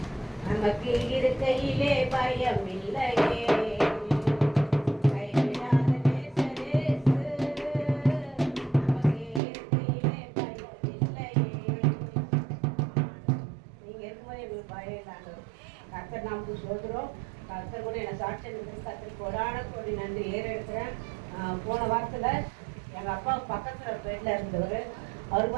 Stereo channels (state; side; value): drops out; left; at 9.4 s